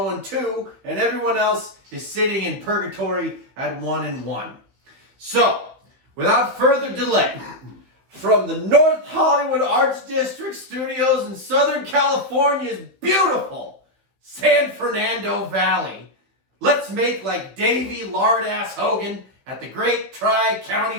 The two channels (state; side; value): late; left; 15 ms